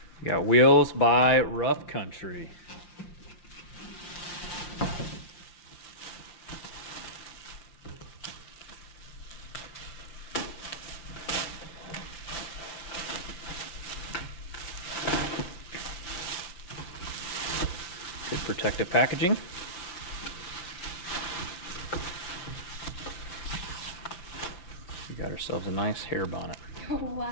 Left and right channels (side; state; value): right; late; 5.6 ms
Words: We got wheels by Rough Country. Good protective packaging. We got ourselves a nice hair bonnet. Oh,